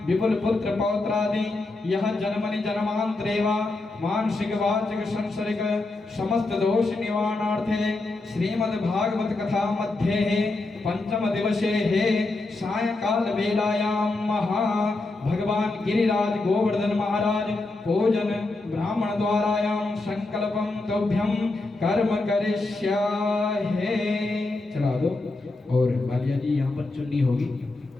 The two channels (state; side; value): quieter; right; 3.1 dB